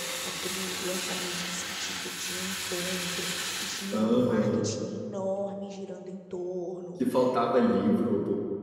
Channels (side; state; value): both; identical; correlation 1.00